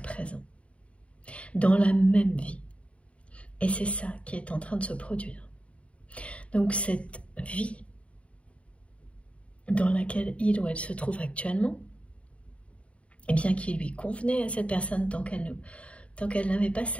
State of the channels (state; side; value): late; right; 0.063 ms